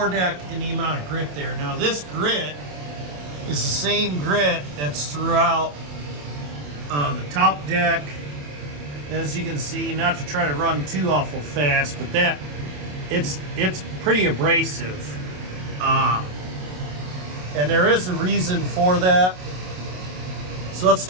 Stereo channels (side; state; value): left; late; 27 ms